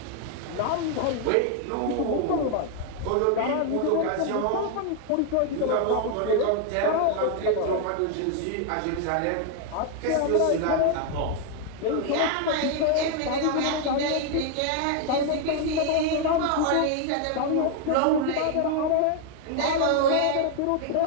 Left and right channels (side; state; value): both; different; correlation 0.00